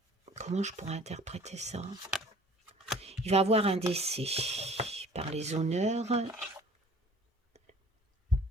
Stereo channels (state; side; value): normal; both; correlation 0.50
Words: Comment je pourrais interpréter ça? Il va avoir un décès par les honneurs.